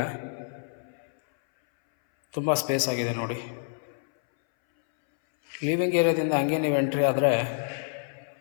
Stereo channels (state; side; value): silent; right; 60 dB below the other